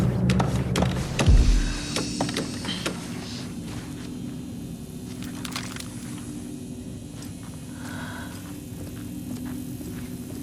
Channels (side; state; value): both; identical; correlation 1.00